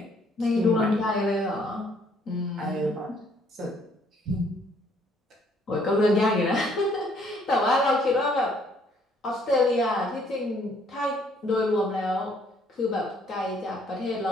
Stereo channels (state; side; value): normal; both; correlation 0.64